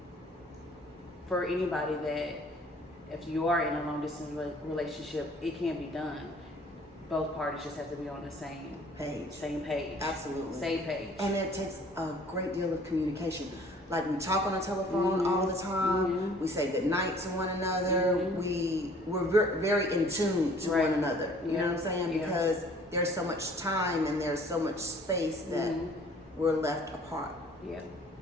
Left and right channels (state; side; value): normal; both; correlation 0.54